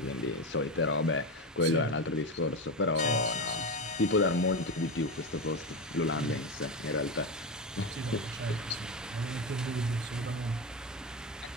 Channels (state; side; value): normal; both; correlation 0.17